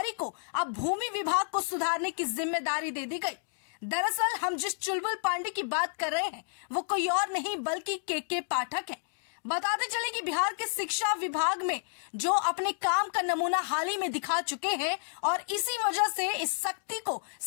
को अब भूमि विभाग को सुधारने की जिम्मेदारी दे दी गई। दरअसल हम जिस चुलबुल पांडे की बात कर रहे हैं वो कोई और नहीं बल्कि के पाठक है। बताते चले कि बिहार के शिक्षा विभाग में जो अपने काम का नमूना हाल ही में दिखा चुके हैं और इसी वजह से इस शक्ति को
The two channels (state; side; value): silent; right; digital silence